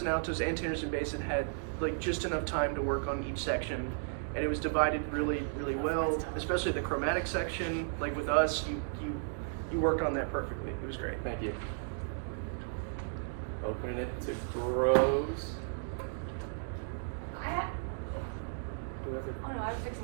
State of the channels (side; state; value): left; silent; digital silence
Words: and altos and tenors and bass had like just enough time to work on each section, and it was divided really, really well. Especially the chromatic section. Like with us, you you worked on that perfectly. It was great. Thank you. Opening it to grows. I have. Whoever. Oh no, I was fixing